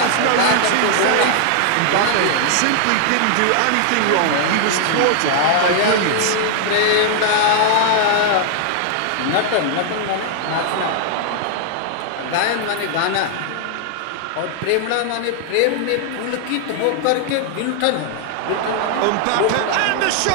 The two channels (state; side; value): different; both; correlation 0.00